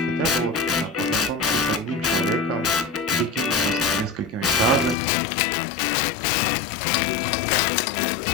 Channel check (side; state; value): right; drops out; at 5.0 s